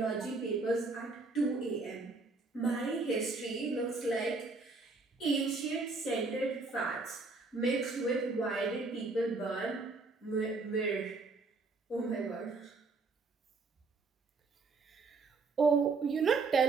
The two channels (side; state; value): left; quieter; 3.8 dB